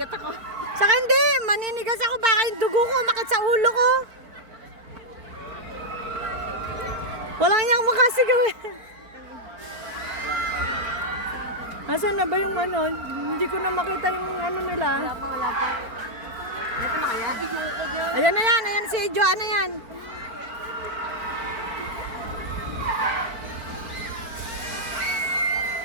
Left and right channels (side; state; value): left; late; 4.5 ms